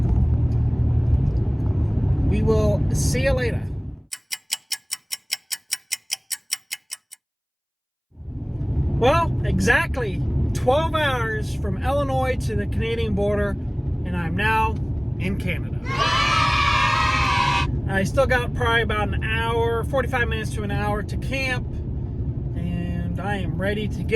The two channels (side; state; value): both; identical; correlation 1.00